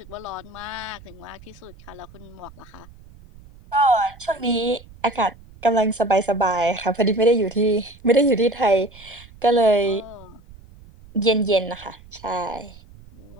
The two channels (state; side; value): noise; right; rumble, 22 dB below the sound